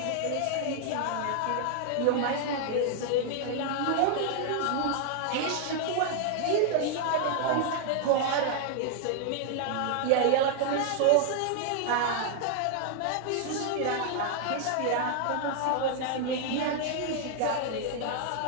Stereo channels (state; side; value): different; both; correlation 0.00